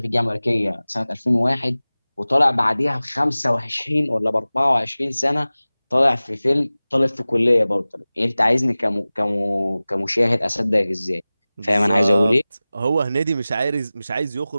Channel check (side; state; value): both; inverted; correlation -0.98